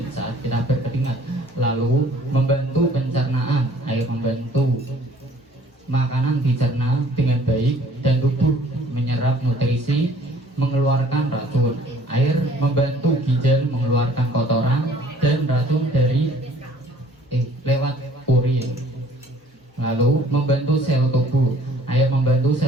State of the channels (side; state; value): both; normal; correlation 0.56